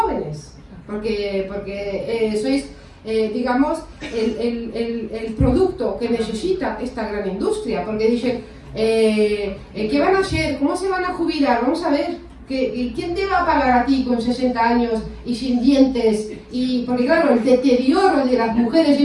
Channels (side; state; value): both; identical; correlation 1.00